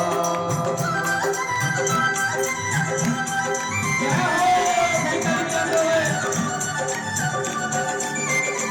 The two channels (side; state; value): both; identical; correlation 1.00